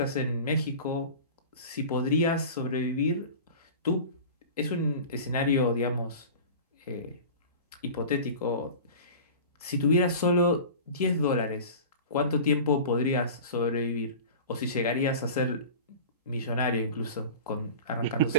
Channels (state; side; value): inverted; both; correlation -0.36